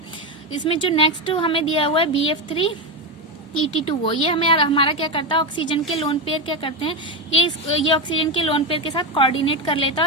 इसमें जो नेक्स्ट हमें दिया हुआ है BF3ET2, ये हमारा क्या करता है, ऑक्सीजन के लोन पेयर क्या करते हैं, ये ऑक्सीजन के लोन पेयर के साथ कोऑर्डिनेट कर लेता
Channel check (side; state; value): both; normal; correlation 0.12